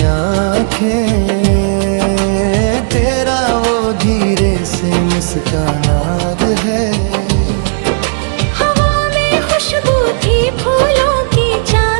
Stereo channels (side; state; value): left; silent; digital silence